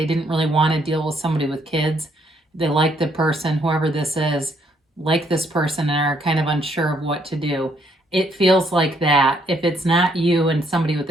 didn't really want to deal with somebody with kids. They like the person, whoever this is, like this person and are kind of unsure of what to do. It feels like that. If it's not you and somebody with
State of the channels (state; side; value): normal; both; correlation 0.70